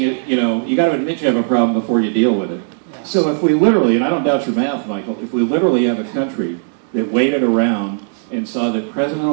you got to admit you have a problem before you deal with it. So if we literally, and I don't doubt your math, Michael, if we literally have a country that waited around and saw that President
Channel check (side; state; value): left; silent; 68 dB below the other